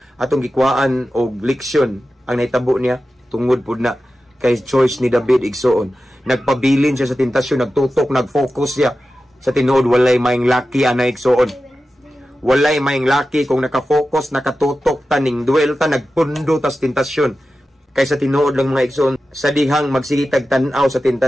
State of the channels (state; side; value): normal; both; correlation 0.93